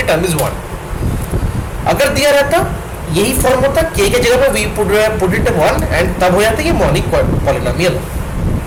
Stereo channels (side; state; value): both; identical; correlation 1.00